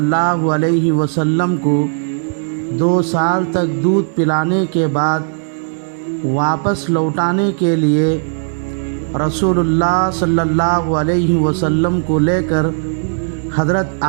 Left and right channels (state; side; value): silent; left; 66 dB below the other